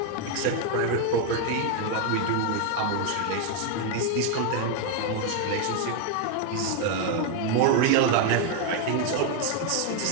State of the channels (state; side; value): different; both; correlation 0.01